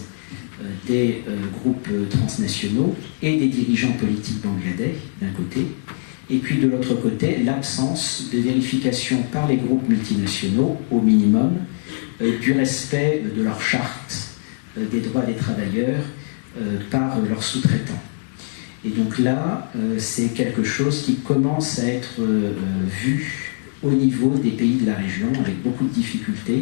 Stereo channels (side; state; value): right; silent; digital silence